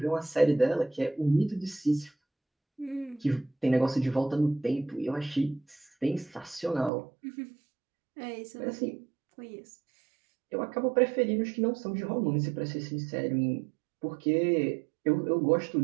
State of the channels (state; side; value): drops out; left; at 6.9 s